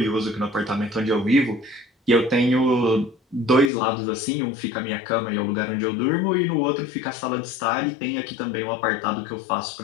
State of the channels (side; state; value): right; drops out; at 3.7 s